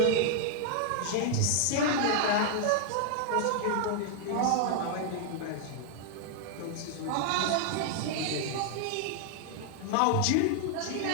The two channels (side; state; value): both; different; correlation -0.01